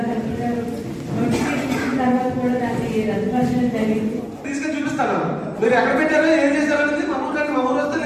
కలెక్టర్ గారు నోటిఫికేషన్ ఇచ్చిన తర్వాత కూడా దాన్ని రద్దుపరచడం జరిగింది. తీసుకొని చూపిస్తాను, మీరు ఎక్కడ పెట్టారో ఏం చేశారో అనేది మా ఊరు వస్తే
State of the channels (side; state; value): both; identical; correlation 1.00